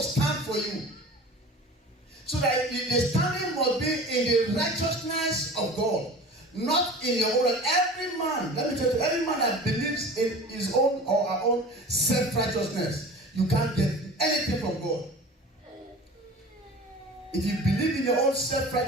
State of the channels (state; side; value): normal; both; correlation 0.39